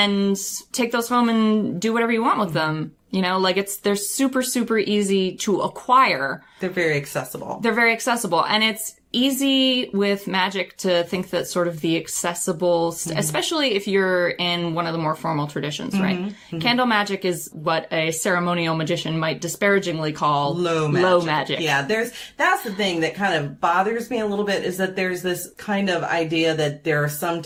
take those home and do whatever you want with them. They're super, super easy to acquire. They're very accessible. And it's easy with magic to think that sort of the accessible, especially if you're in one of the more formal traditions, right? Candle magic is what a ceremonial magician might disparagingly call low magic. Yeah, that's the thing that kind of bothers me a little bit, is that there's this kind of idea that there are some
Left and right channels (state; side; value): identical; both; correlation 1.00